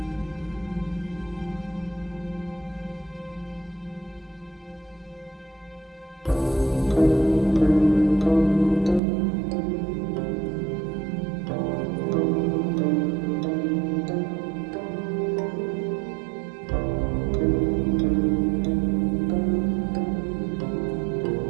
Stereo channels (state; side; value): drops out; left; at 9.0 s